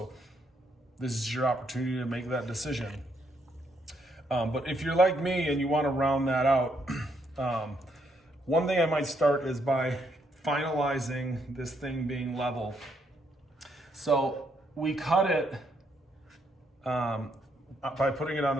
this is your opportunity to make that decision. But if you're like me and you want to round that out, one thing I might start is by finalizing this thing being level. So we cut it by putting it on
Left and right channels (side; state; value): both; normal; correlation 0.74